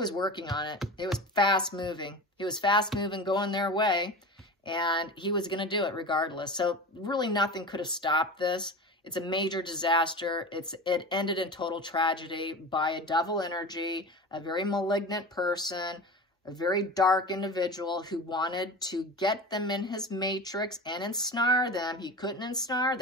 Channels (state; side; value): normal; both; correlation 0.30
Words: working on it. It was fast moving. He was fast moving, going their way, and he was going to do it regardless. So really nothing could have stopped this. It's a major disaster. It ended in total tragedy by a devil energy, a very malignant person, a very dark individual who wanted to get them in his matrix and ensnare them. He couldn't ensnare